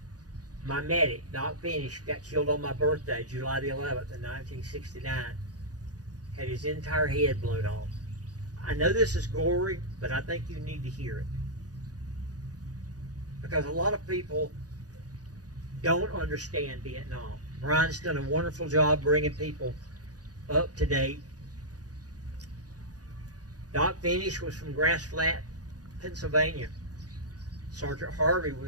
My medic, Doc Finish, got killed on my birthday, July the 11th of 1969. Had his entire head blown off. I know this is gory, but I think you need to hear it. Because a lot of people don't understand Vietnam. Brian's done a wonderful job bringing people up to date. Doc Finish was from Grass Flat, Pennsylvania. Sergeant Harvey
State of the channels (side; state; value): left; late; 0.68 ms